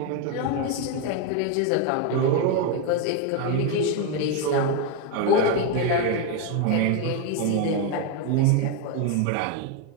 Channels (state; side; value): different; both; correlation 0.02